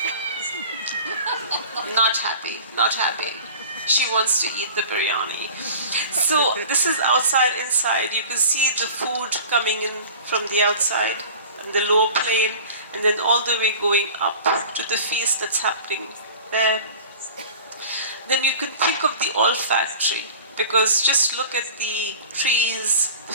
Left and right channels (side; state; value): both; inverted; correlation -0.40